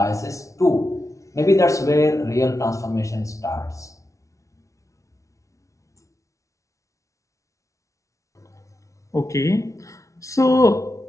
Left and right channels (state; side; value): late; right; 0.15 ms